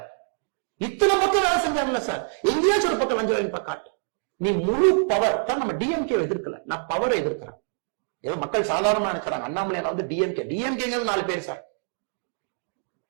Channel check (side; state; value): left; silent; 62 dB below the other